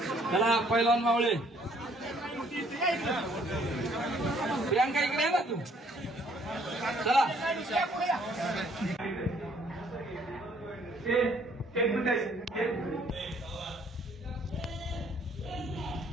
चला पहिलवान मावळे. प्रियांका इकडे आहे ना तू, चला.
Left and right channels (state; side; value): normal; both; correlation 0.63